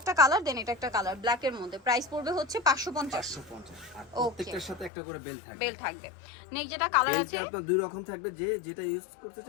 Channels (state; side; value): drops out; right; at 4.9 s